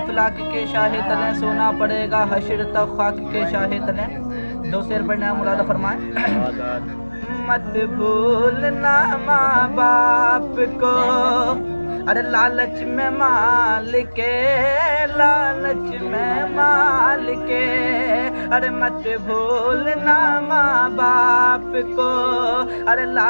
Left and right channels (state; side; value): inverted; both; correlation -1.00